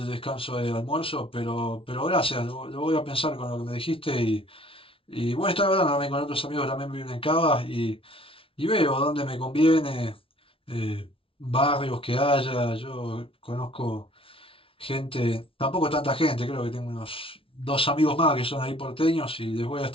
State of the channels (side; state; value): right; late; 0.26 ms